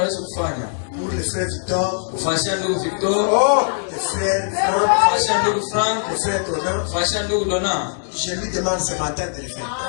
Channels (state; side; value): silent; right; digital silence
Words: le frère Victor, le frère Franck, le frère Donna, je lui demande ce matin de le faire.